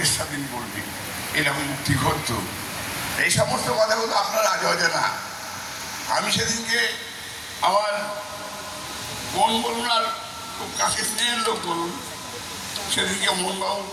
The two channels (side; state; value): both; identical; correlation 1.00